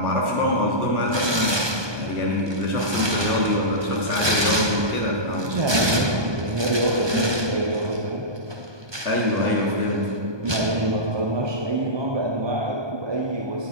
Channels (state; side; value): late; left; 1.2 ms